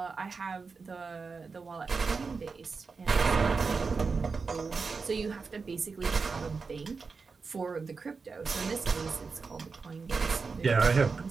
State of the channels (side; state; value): left; quieter; 4.7 dB